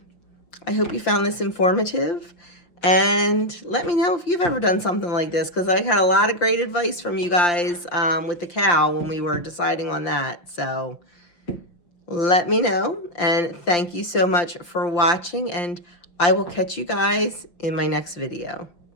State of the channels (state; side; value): late; right; 5.7 ms